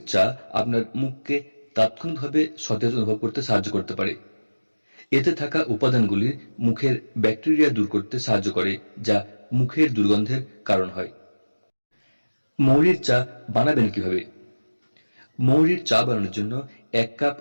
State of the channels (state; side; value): inverted; both; correlation -1.00